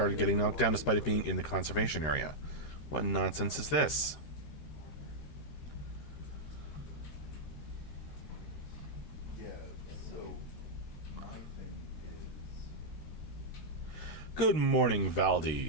getting knocked down despite it being in the conservation area. What nonsense is this? Good morning,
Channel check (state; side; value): late; right; 13 ms